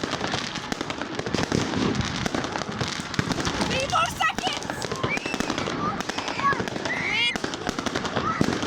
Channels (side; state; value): both; identical; correlation 1.00